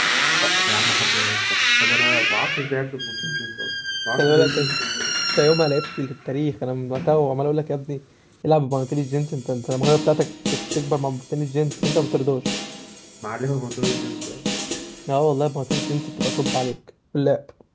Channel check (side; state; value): both; identical; correlation 1.00